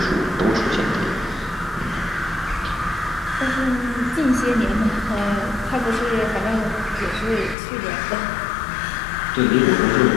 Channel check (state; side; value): drops out; right; at 7.6 s